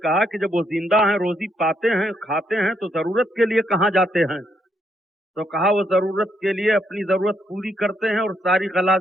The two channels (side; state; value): both; normal; correlation 0.75